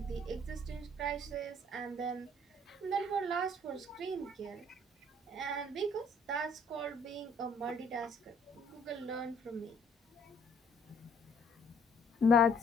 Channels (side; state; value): both; normal; correlation 0.61